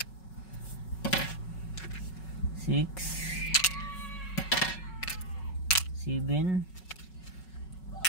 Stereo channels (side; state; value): right; late; 5.4 ms